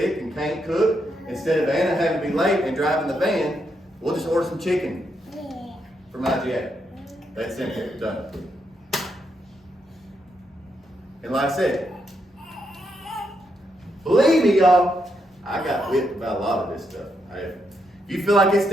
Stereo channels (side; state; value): both; normal; correlation 0.80